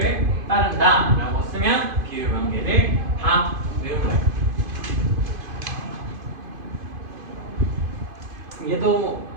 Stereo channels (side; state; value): left; late; 2.5 ms